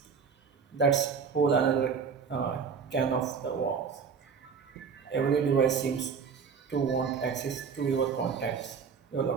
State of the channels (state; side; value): quieter; left; 6.1 dB